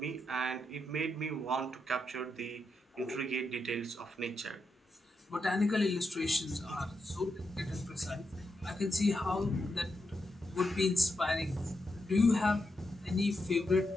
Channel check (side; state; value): both; normal; correlation 0.85